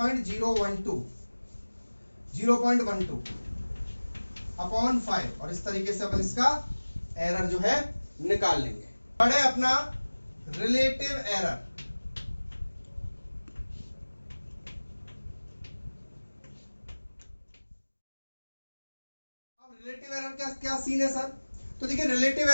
0.12 अपॉन 5, और इस तरीके से अपन इसका एरर जो है निकाल लेंगे। पढ़े अपना रिलेटिव एरर। अब रिलेटिव एरर क्या क्या सीन है सर? तो देखिए रिलेटिव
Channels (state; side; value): inverted; both; correlation -1.00